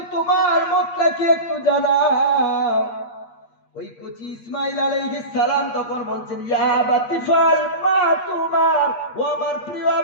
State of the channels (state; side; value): late; right; 8.5 ms